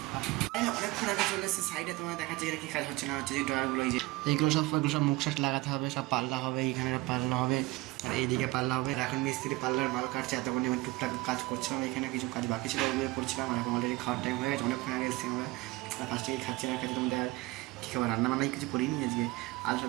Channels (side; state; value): left; quieter; 21.2 dB